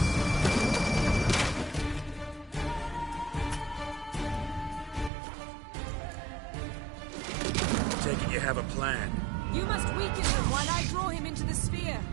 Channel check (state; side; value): drops out; left; at 5.1 s